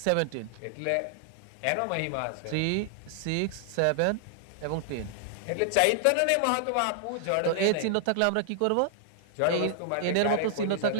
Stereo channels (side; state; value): both; different; correlation -0.01